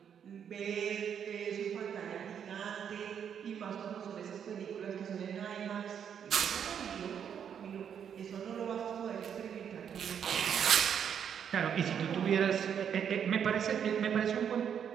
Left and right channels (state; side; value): quieter; left; 8.2 dB